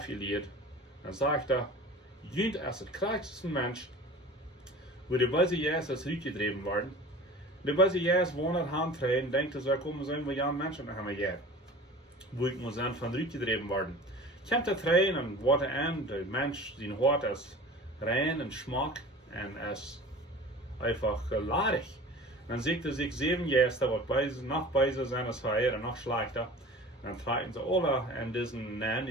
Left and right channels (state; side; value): normal; both; correlation 0.40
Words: Dann sagt er, jünd als der kräftigste Mensch, wo die Böse Jesus rückgetrieben worden. Die Böse Jesus wohnt handtreten, denkt, dass er kommen sollen, wo ja Menschen haben wir hier. Wo ich muss dann von rückgetrieben worden. Kommt er rein und wird an, der Mensch, sein Hort ist rein und Schmack und ist einfach ladig. Dann sieht er sich 7 Gäste, was noch beiser sind als Feier und noch schlechter. Dann fragen sie alle an diesen Namen,